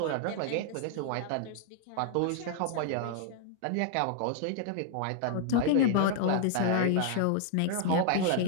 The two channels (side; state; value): both; different; correlation 0.00